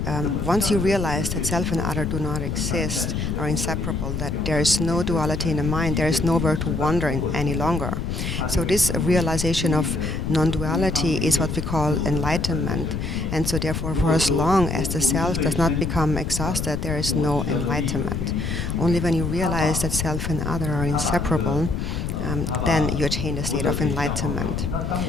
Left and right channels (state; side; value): noise; left; rumble, 3 dB below the sound